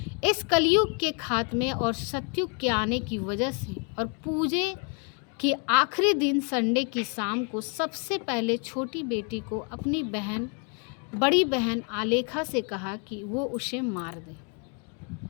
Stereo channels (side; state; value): right; quieter; 37.2 dB